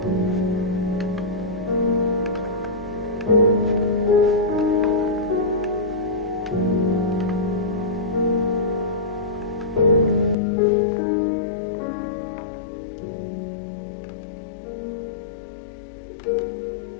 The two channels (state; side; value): drops out; right; at 10.4 s